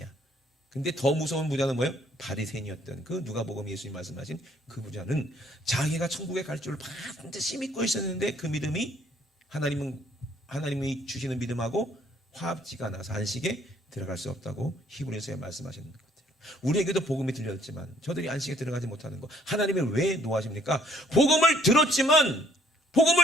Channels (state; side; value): normal; both; correlation 0.64